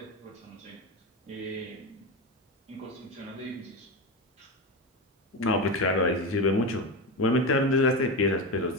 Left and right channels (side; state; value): both; normal; correlation 0.17